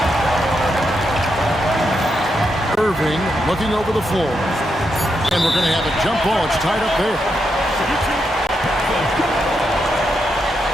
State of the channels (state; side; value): normal; both; correlation 0.83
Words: Irving looking over the floor. And we're going to have a jump ball. It's tied up there.